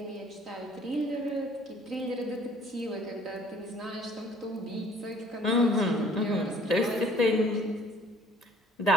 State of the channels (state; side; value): normal; both; correlation 0.56